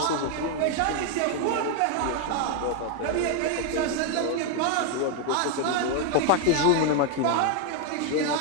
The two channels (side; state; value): both; different; correlation 0.01